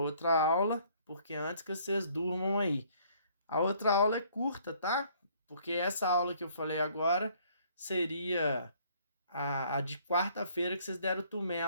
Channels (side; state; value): both; inverted; correlation -0.61